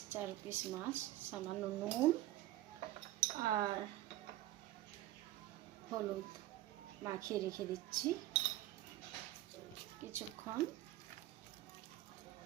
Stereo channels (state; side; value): quieter; left; 15.2 dB